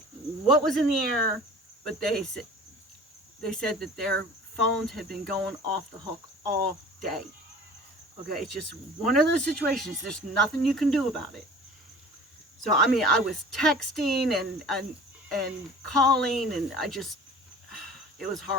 what was in the air, but they said that their phones had been going off the hook all day. Okay, it's just one of those situations. There's nothing you can do about it. So, I mean, I was texting and calling, and it was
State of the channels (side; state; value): both; normal; correlation 0.44